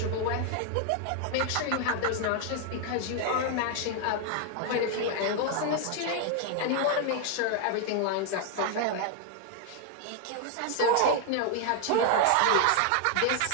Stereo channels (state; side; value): different; both; correlation 0.00